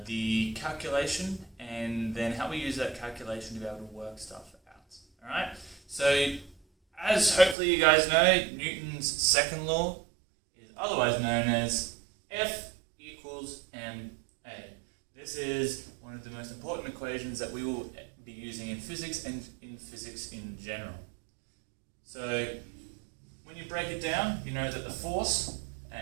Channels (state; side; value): drops out; left; at 7.6 s